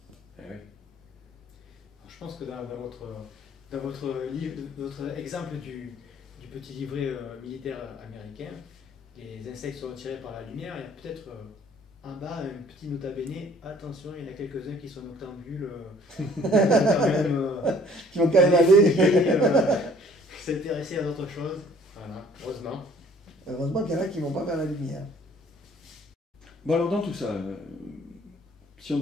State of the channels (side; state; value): both; normal; correlation 0.56